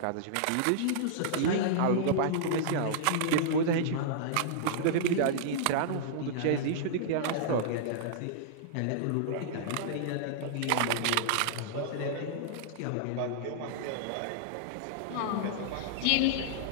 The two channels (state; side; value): different; both; correlation -0.02